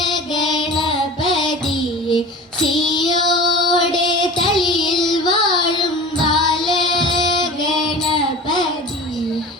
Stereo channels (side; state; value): both; normal; correlation 0.36